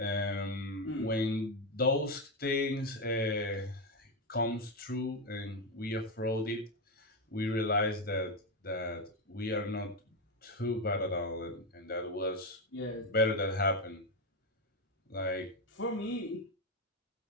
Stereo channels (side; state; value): both; normal; correlation 0.09